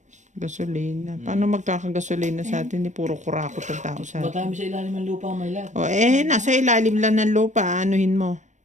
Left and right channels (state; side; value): late; left; 0.35 ms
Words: Gasolina. Paano magkakagasolina sa atin? Puro kurakot ang tao sa atin. Matami sa ilalim ng lupa, may lahat. O nasa ilalim lang ng lupa. Anuhin mo.